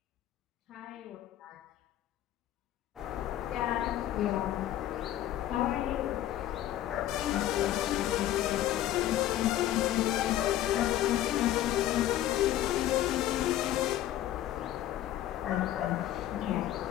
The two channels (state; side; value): quieter; right; 13.1 dB